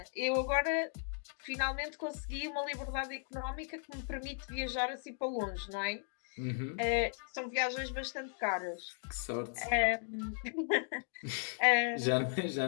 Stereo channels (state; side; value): silent; right; 53 dB below the other